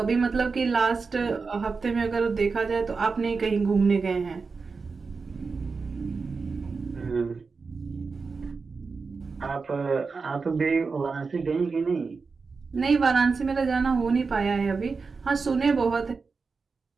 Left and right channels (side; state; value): left; quieter; 4.6 dB